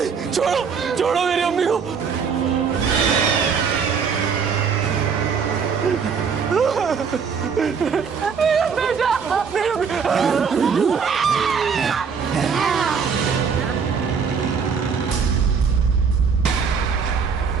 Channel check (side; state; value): left; quieter; 6.1 dB